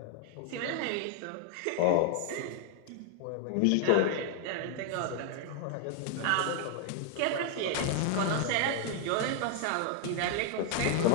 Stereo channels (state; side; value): different; both; correlation 0.00